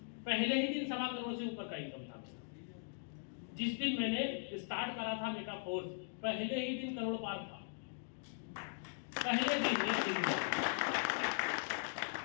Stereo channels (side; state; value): right; silent; digital silence